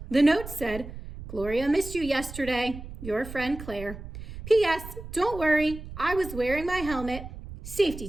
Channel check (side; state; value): right; noise; rumble, 12 dB below the sound